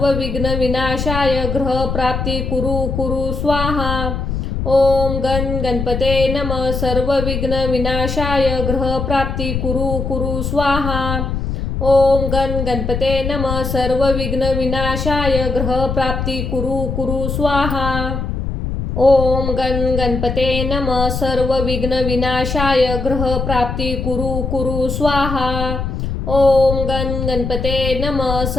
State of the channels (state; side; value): noise; left; rumble, 3 dB below the sound